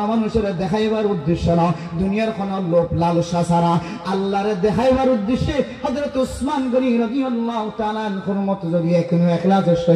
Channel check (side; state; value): both; identical; correlation 1.00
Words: মানুষের দেখাইবার উদ্দেশ্য না দুনিয়ার কোন লোভ লালসা ছাড়া আল্লাহর দেখাইবার উদ্দেশ্যে হযরত ওসমান গনি রাদিয়াল্লাহু তাআলা আনহুর মতো যদি একিনো ইখলাসের